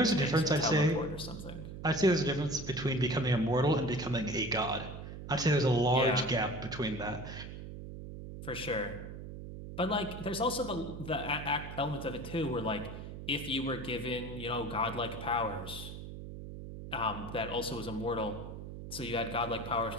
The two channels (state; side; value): noise; right; hum, 10 dB below the sound